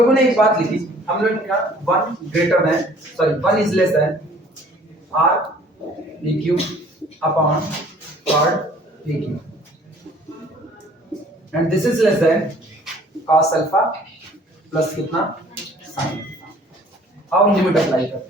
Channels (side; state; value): both; normal; correlation 0.54